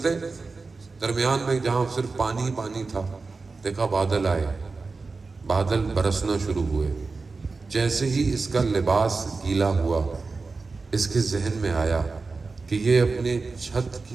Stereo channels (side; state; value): left; quieter; 4.1 dB